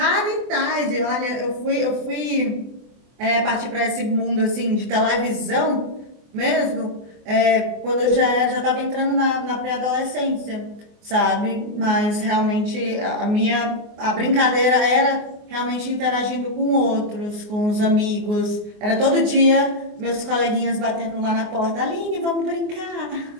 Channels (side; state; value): left; late; 24 ms